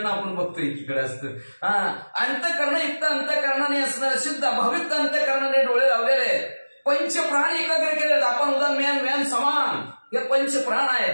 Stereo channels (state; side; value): inverted; both; correlation -1.00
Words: आपण बघतोय एकीकडे असतं हा अंतःकरण युक्त अंतःकरणाने असणार शुद्ध भावयुक्त अंतःकरणाने डोळे लावलेले आहेत पंचप्राण एकाग्र केले आपण उदाहरण म्यान म्यान समान हे पंचप्राण